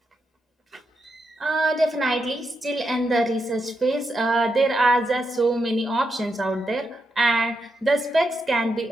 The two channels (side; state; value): both; normal; correlation 0.84